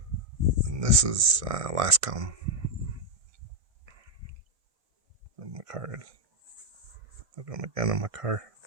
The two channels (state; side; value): late; left; 1.6 ms